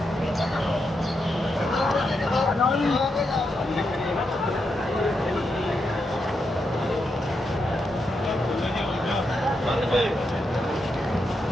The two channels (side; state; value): both; normal; correlation 0.84